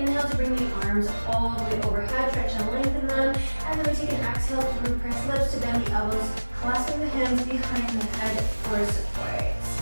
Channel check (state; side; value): inverted; both; correlation -1.00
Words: to bring the arms all the way overhead, stretch and lengthen them. And then we take an exhale through pursed lips to bend the elbows, clasping the hands behind the head for support.